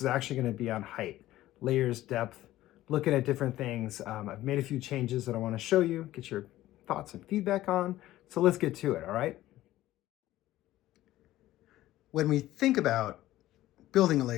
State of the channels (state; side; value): quieter; right; 15.2 dB